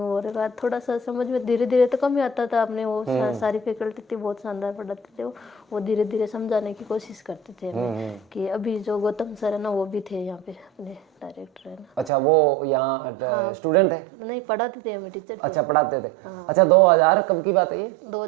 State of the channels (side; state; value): left; drops out; at 12.1 s